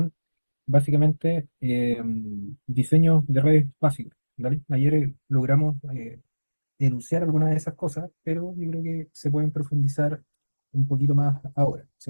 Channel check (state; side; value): inverted; both; correlation -1.00